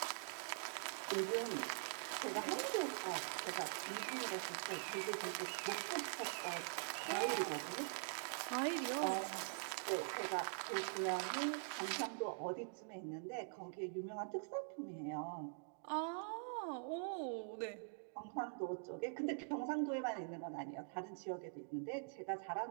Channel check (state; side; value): silent; left; digital silence